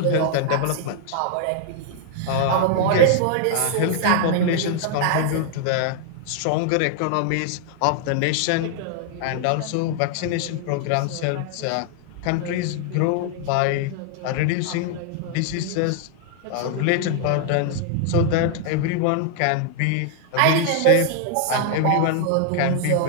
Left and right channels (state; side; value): different; both; correlation 0.00